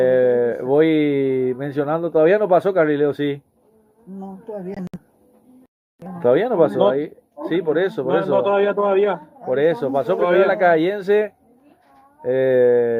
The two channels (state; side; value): identical; both; correlation 1.00